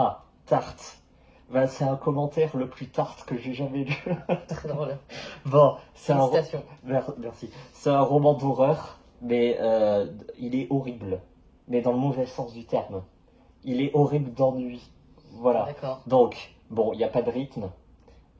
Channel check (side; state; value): both; identical; correlation 1.00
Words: Tartt. Ben, c'est un commentaire le plus tarte que j'ai jamais lu. Très drôle. Bon, c'est Merci. C'est un roman d'horreur, mais il est horrible. Mais dans le mauvais sens du terme. Il est horrible d'ennui. Voilà. Donc, bon, il n'y a pas de rythme.